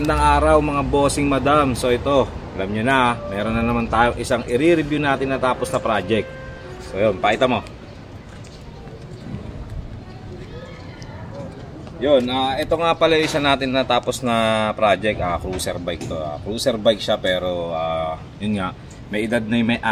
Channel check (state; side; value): identical; both; correlation 1.00